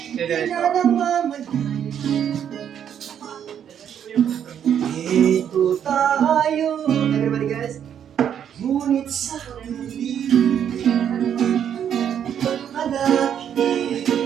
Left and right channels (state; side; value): quieter; left; 9.0 dB